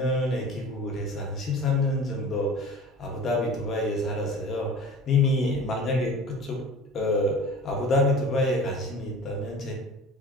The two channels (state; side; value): normal; both; correlation 0.39